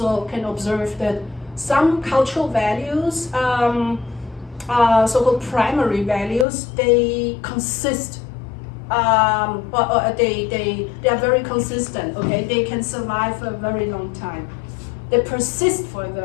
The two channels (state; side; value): drops out; right; at 6.5 s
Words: can observe that some cultural values, so-called primary values, they consist. They are very consistent, okay? They can survive for a very long time. They persist for a